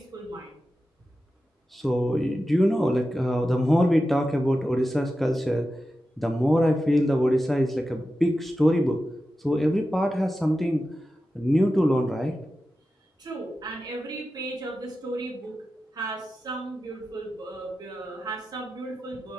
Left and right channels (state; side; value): normal; both; correlation 0.92